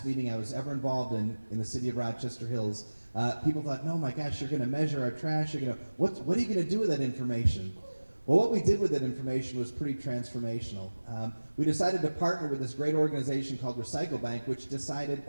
meeting I was ever involved in the city of Rochester Hills. People thought, no, my gosh, you're going to measure our trash. What are you going to do with that information? Well, what we did with that information was pretty transformational. We decided to partner with this great organization called Recycle Bank, which decided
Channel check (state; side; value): inverted; both; correlation -1.00